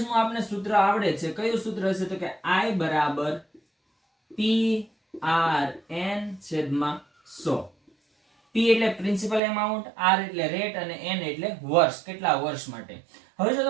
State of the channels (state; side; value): drops out; left; at 9.4 s